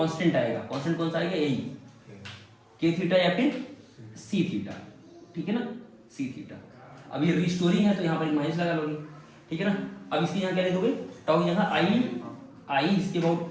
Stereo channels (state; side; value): identical; both; correlation 1.00